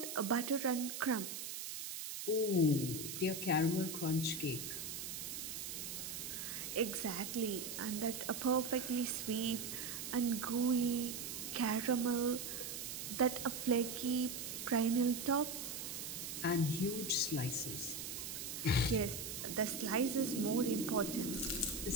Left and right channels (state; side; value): noise; right; hiss, 6 dB below the sound